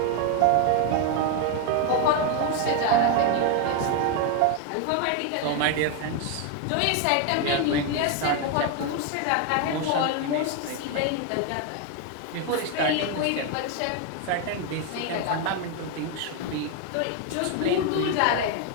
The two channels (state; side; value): different; both; correlation 0.01